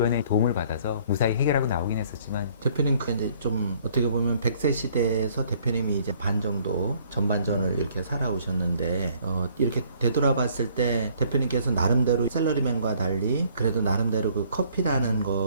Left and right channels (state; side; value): inverted; both; correlation -0.60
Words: 도움을 받아서 무사히 해결하고 나오긴 했었지만 대표님 그 이제 좀 어떻게 보면 100세 시대에서 대표님이 이제 반 정도 전반전을 이렇게 살아오셨는데 이렇게 되돌아봤을 때 대표님께서 나름대로 샐러리맨과 달리 그래도 나름대로 그 커피라는